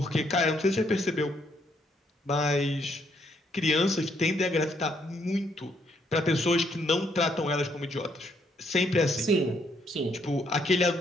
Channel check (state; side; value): normal; both; correlation 0.71